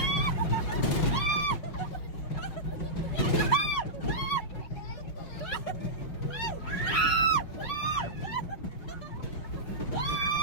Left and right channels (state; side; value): late; right; 5.4 ms